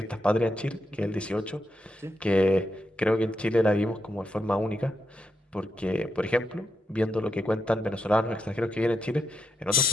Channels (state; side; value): normal; both; correlation 0.84